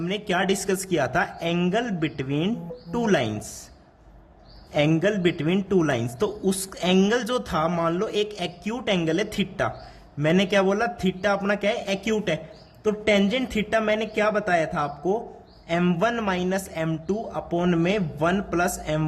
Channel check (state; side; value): identical; both; correlation 1.00